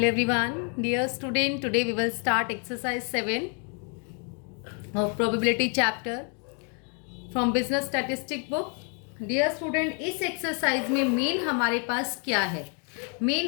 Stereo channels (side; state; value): right; quieter; 39.1 dB